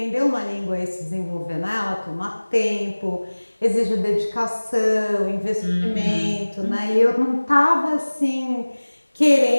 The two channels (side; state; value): both; inverted; correlation -1.00